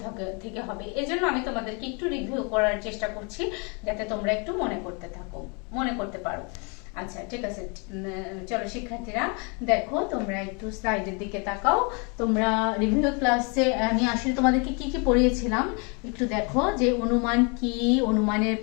থেকে হবে। এজন্য আমি তোমাদেরকে একটু রিভিউ করার চেষ্টা করছি, যাতে তোমরা একটু মনে করতে পারো। আচ্ছা, ঠিক আছে। চলো শিক্ষার্থীরা, দেখো তোমরা একটু স্লাইডের দিকে তাকাও। তোমরা রিভিউ ক্লাসে আমি আসলে তোমাদেরকে কি কি পড়িয়েছিলাম একটু দেখো, যে অনুমান কি, অনুমানের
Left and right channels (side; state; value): right; quieter; 33.7 dB